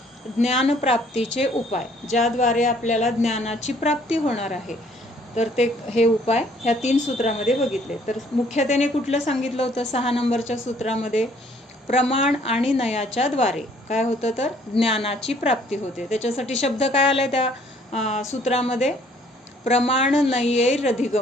ज्ञानप्राप्तीचे उपाय, ज्याद्वारे आपल्याला ज्ञानाची प्राप्ती होणार आहे, तर ते हे उपाय ह्या 3 सूत्रामध्ये बघितले. तर मुख्यतेने कुठलं सांगितलं होतं? 6 नंबरच्या सूत्रामध्ये प्रमाण आणि नयाच्या द्वारे काय होतं? तर ज्ञानाची प्राप्ती होते. त्याच्यासाठी शब्द काय आलाय त्या सूत्रामध्ये? प्रमाण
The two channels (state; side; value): normal; both; correlation 0.61